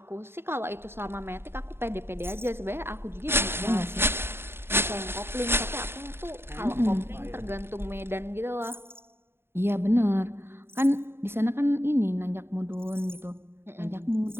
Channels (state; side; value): late; left; 0.11 ms